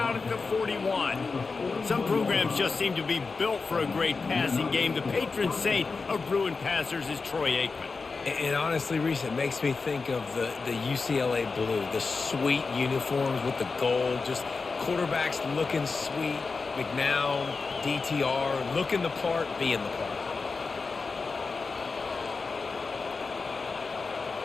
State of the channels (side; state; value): right; quieter; 4.4 dB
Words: at the 41. Some programs just seem to be built for a great passing game. The patron saint of Bruin passers is Troy Aikman. And honestly, Reese, it makes me think of the UCLA blue, the sweet uniforms with the gold, just quarterbacks looking sweet, McNown, DTR, looking the part, being the part.